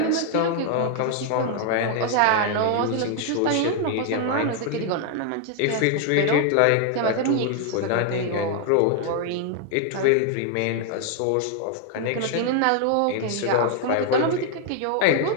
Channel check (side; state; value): both; different; correlation 0.00